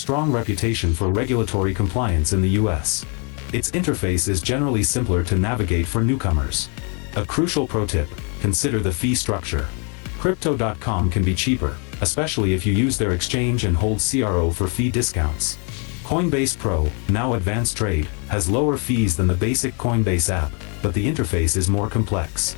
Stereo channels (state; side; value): quieter; right; 36.7 dB